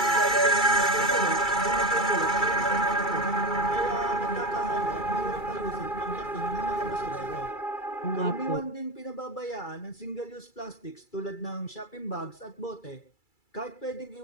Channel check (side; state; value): right; late; 2.3 ms